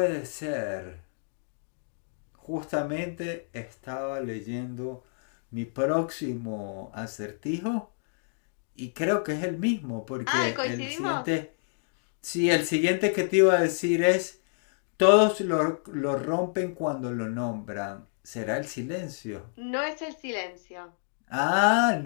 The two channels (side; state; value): right; silent; digital silence